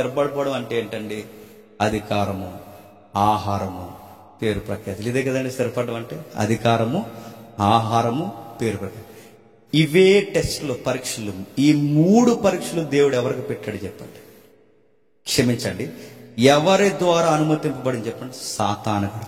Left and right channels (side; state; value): both; identical; correlation 1.00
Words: అంటే ఏంటండి? అధికారము, ఆహారము, పేరు ప్రఖ్యాతులు. ఇదే కదండి స్థిరపడడం అంటే. అధికారము, ఆహారము, పేరు ప్రఖ్యాతి. ఇవే టెస్టులు, పరీక్షలు. ఈ 3 పరీక్షలు దేవుడు ఎవరికి పెట్టాడు చెప్పండి? క్షమించండి, ఎవరి ద్వారా అనుమతింపబడింది చెప్పండి? సాతానుడి